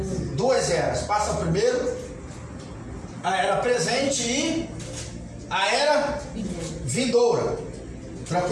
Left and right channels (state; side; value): identical; both; correlation 1.00